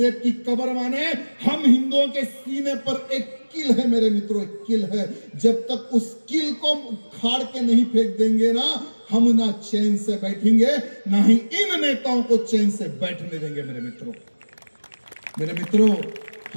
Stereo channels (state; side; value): inverted; both; correlation -1.00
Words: की कब्र माने हम हिंदुओं के सीने पर एक किल है। मेरे मित्रों, एक किल है। जब तक उस किल को उखाड़ के नहीं फेंक देंगे ना, हम ना चैन से बैठेंगे, ना ही इन नेताओं को चैन से बैठने देंगे। मेरे मित्रों,